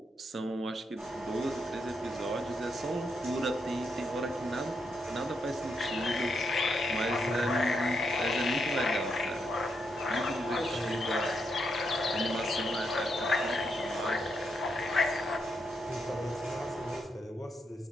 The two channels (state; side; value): normal; both; correlation 0.80